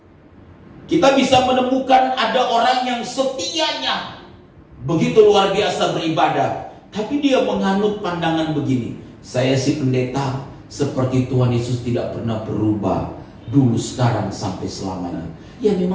Kita bisa menemukan ada orang yang setianya begitu luar biasa beribadah, tapi dia menganut pandangan begini: saya si pendeta seperti Tuhan Yesus tidak pernah berubah, dulu, sekarang, sampai selamanya. Ya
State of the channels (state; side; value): identical; both; correlation 1.00